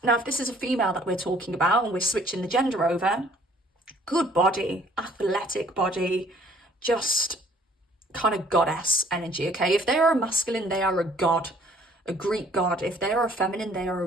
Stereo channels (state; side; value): normal; both; correlation 0.58